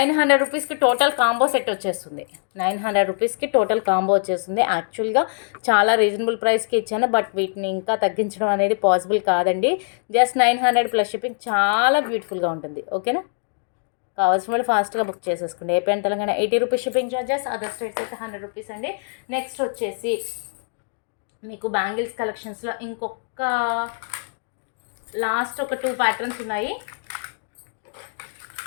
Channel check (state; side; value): silent; right; digital silence